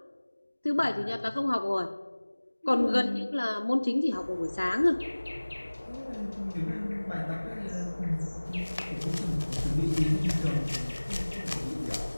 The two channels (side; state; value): both; inverted; correlation -1.00